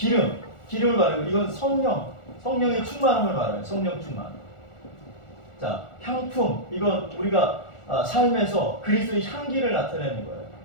말하고, 이건 성령의 충만함을 말해요. 성령 충만. 자, 향품, 이건 우리가 삶에서 그리스도의 향기를 나타내는 거예요.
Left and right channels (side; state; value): right; late; 1.4 ms